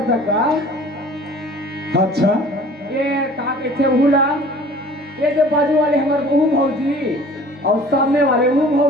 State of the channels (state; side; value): normal; both; correlation 0.48